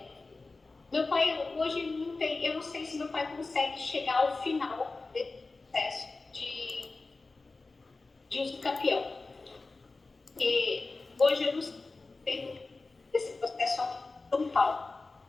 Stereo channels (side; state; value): right; quieter; 3.6 dB